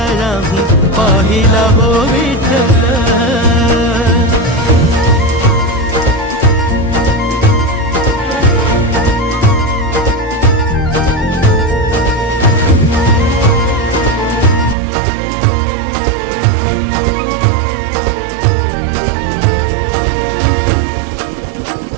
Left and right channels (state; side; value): drops out; left; at 14.8 s